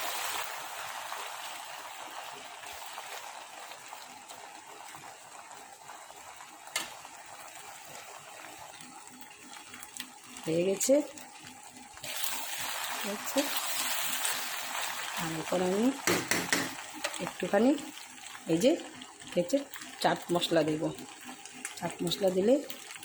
হয়ে গেছে, হচ্ছে। আর এখন আমি একটুখানি এই যে হচ্ছে চাট মশলা দেব। চাট মশলা দিলে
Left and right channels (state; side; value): identical; both; correlation 1.00